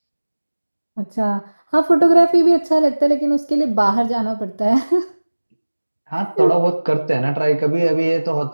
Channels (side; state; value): both; inverted; correlation -1.00